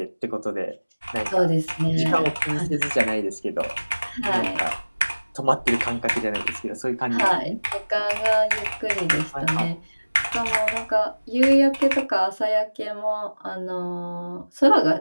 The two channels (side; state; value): both; inverted; correlation -1.00